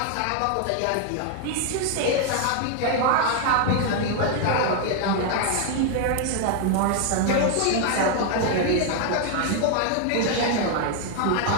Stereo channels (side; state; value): both; different; correlation 0.00